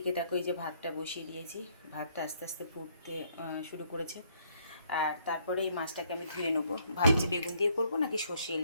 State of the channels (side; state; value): both; inverted; correlation -0.68